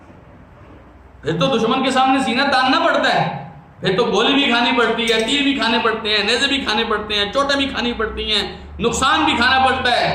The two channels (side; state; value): both; identical; correlation 1.00